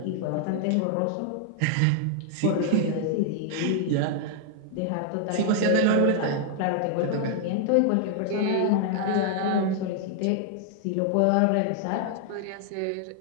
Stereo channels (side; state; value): both; different; correlation -0.01